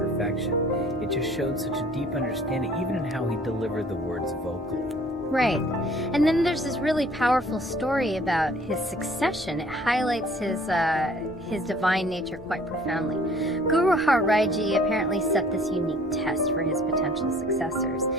it just showed such a deep understanding, even in how he delivered the words vocally. Right. And then there's this really powerful story about his succession. It highlights his divine nature quite profoundly. Guru Harbobind Ji apparently set this unique test for his potential successors.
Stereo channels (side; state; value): both; normal; correlation 0.54